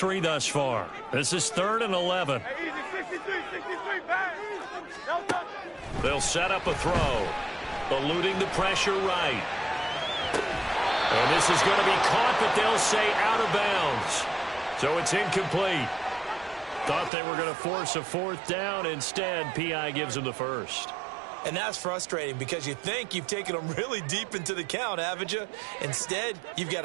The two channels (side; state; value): left; drops out; at 17.1 s